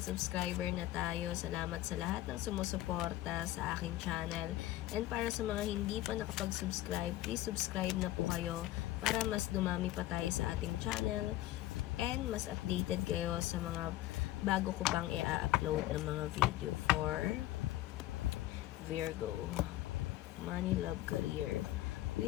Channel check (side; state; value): right; quieter; 15.5 dB